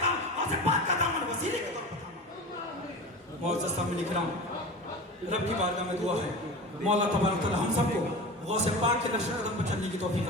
पाक का दामन वसीले के तौर पर थामा। मुअज़्ज़ज़ सामने इकराम, रब की बारगाह में दुआ है, मौला तबारक तआला हम सबको गौसे पाक के नक्श कदम पर चलने की तौफीक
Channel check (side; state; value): both; normal; correlation 0.31